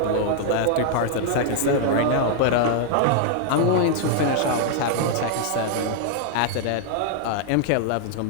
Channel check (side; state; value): both; different; correlation -0.01